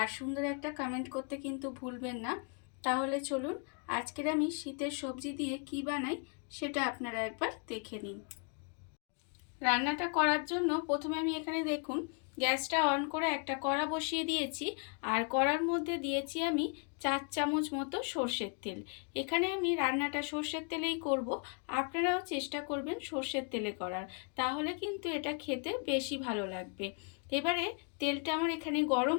সুন্দর একটা কমেন্ট করতে কিন্তু ভুলবেন না। তাহলে চলুন আজকের আমি শীতের সবজি দিয়ে কি বানাই সেটা আপনারা একবার দেখে নিন। রান্নাটা করার জন্য প্রথমে আমি এখানে দেখুন গ্যাসটা অন করে একটা কড়া বসিয়ে দিয়েছি। আর কড়ার মধ্যে দিয়েছি আমি 4 চামচ মতো সর্ষের তেল। এখানে আমি রান্নাটা সর্ষের তেলেই করব, আপনারাও চেষ্টা করবেন সর্ষের তেলে করার, তাহলে কিন্তু এটা খেতে বেশি ভালো লাগবে। এবারে তেলটা আমার এখানে গরম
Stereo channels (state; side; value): quieter; right; 38.1 dB